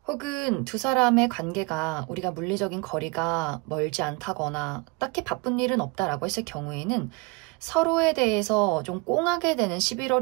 혹은 두 사람의 관계가 우리가 물리적인 거리가 멀지 않다거나 딱히 바쁜 일은 없다라고 했을 경우에는 서로에 대해서 좀 꽁하게 되는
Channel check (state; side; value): quieter; left; 27.4 dB